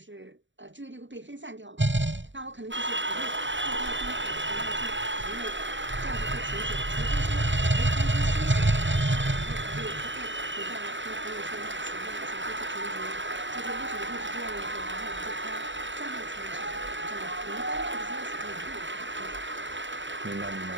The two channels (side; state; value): left; late; 0.54 ms